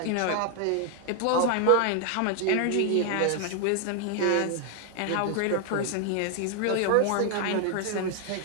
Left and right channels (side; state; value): both; different; correlation 0.00